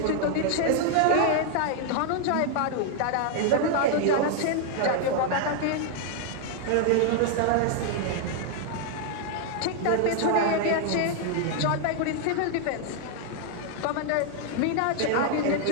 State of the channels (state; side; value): different; both; correlation 0.00